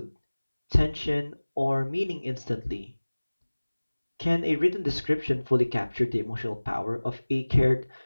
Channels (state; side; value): inverted; both; correlation -1.00